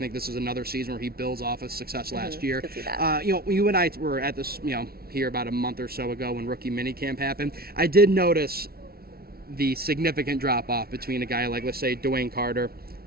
this is another season where he builds off his success last year. Could see that. You and I were at this, here about a month or so ago when rookie minicamp happened. I did notice the significant drop-off between a guy like, let's say, Dwayne Carter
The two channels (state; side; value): late; left; 0.44 ms